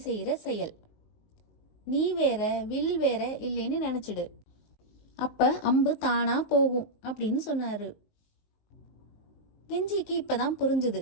செய்யற செயல். நீ வேற வில் வேற இல்லைன்னு நினைச்சிடு. அப்ப அம்பு தானா போகும் அப்படின்னு சொன்னாரு. கெஞ்சிக்கு இப்பதான் புரிஞ்சுது.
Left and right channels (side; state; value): right; late; 19 ms